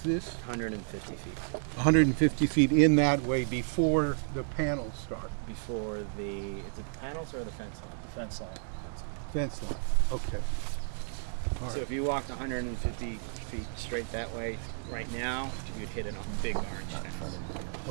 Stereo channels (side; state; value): left; silent; 56 dB below the other